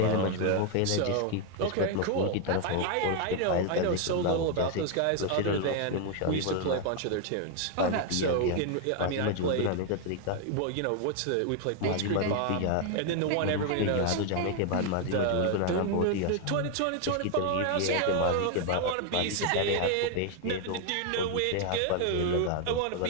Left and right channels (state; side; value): different; both; correlation 0.00